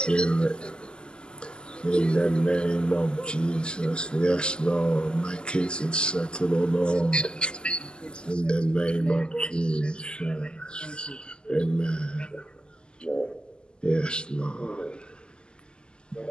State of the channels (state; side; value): late; right; 0.048 ms